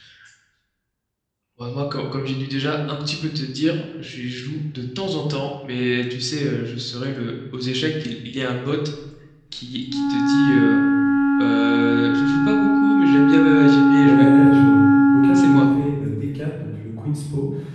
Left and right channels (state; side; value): identical; both; correlation 1.00